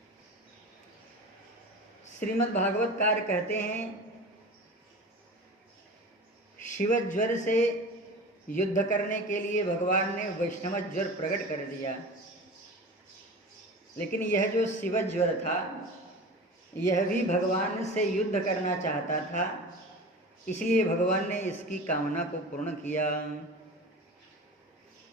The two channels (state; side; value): normal; both; correlation 0.34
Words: श्रीमद् भागवतकार कहते हैं, शिव ज्वर से युद्ध करने के लिए भगवान ने वैष्णव ज्वर प्रकट कर दिया, लेकिन यह जो शिव ज्वर था यह भी भगवान से युद्ध करना चाहता था, इसलिए भगवान ने इसकी कामना को पूर्ण किया।